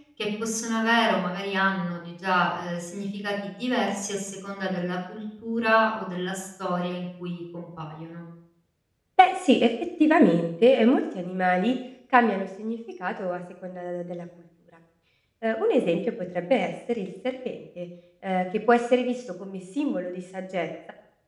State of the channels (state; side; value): identical; both; correlation 1.00